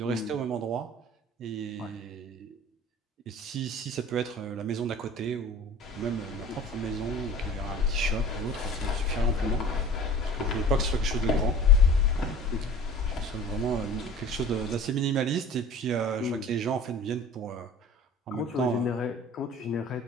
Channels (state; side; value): normal; both; correlation 0.42